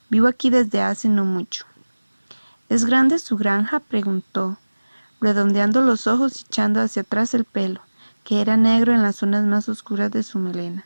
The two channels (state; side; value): inverted; both; correlation -1.00